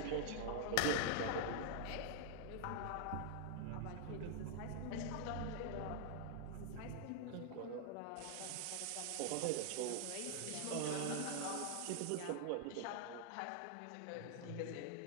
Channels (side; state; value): both; different; correlation 0.00